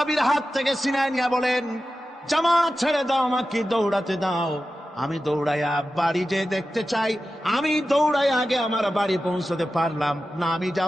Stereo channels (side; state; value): both; normal; correlation 0.93